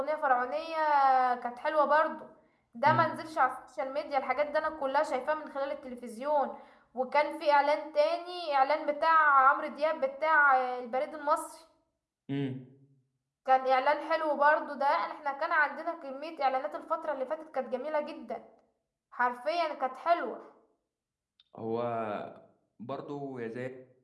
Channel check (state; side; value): identical; both; correlation 1.00